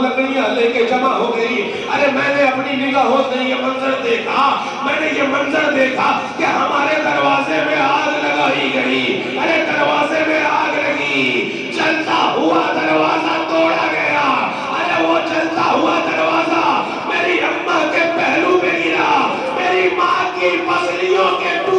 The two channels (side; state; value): both; identical; correlation 1.00